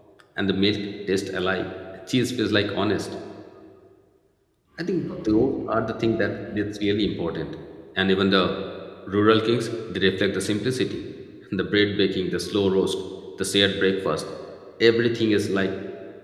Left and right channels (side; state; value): both; identical; correlation 1.00